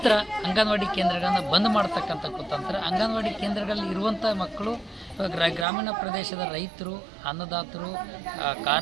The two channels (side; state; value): left; drops out; at 5.7 s